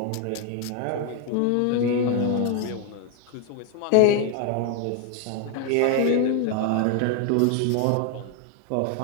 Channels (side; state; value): both; different; correlation 0.01